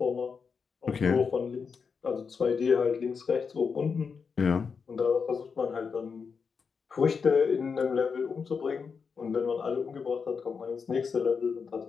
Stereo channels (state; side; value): quieter; right; 5.7 dB